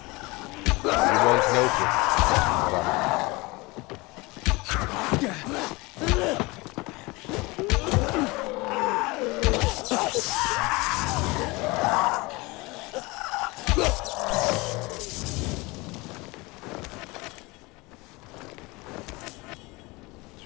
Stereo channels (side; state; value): right; quieter; 24.1 dB